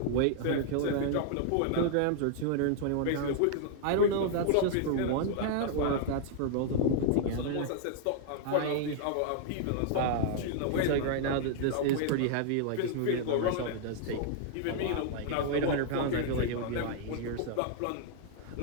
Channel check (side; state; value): both; different; correlation -0.01